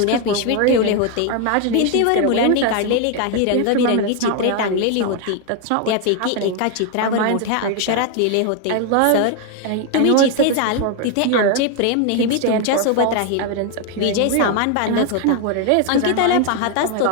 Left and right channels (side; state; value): both; different; correlation 0.01